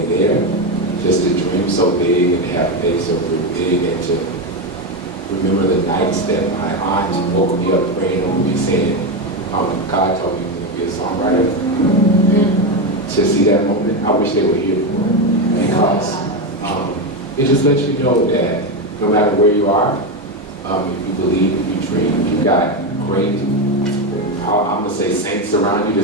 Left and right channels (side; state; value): both; normal; correlation 0.11